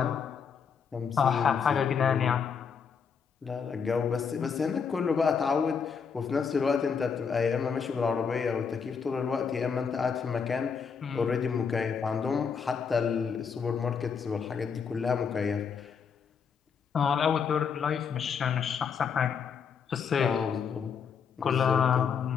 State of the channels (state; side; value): quieter; right; 6.4 dB